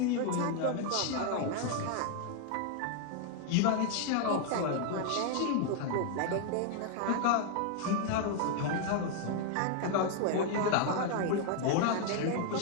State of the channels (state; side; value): different; both; correlation 0.00